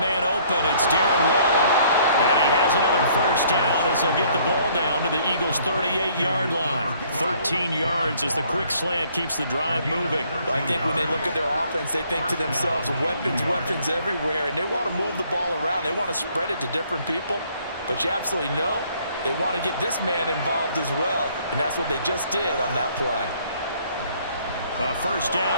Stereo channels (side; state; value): both; inverted; correlation -0.62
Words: man open. It's Darren Waller. And he has another first down as they'll get the ball down to the Eagles' 38-yard line. 13 yards as the quick slant keeps the drive moving. Well, I think when they look at their offense, they think to themselves, weapons, weapons everywhere, and they want to move the ball around. They want to spread it to different people. But you absolutely know they want to get this man involved as well, and that's what they just did on that play. A first